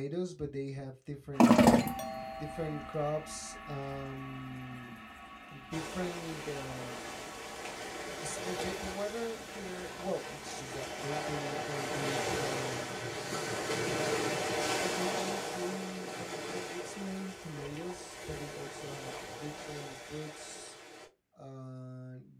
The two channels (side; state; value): both; identical; correlation 1.00